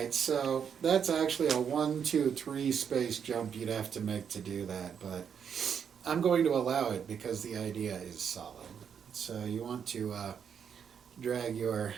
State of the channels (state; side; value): quieter; left; 7.5 dB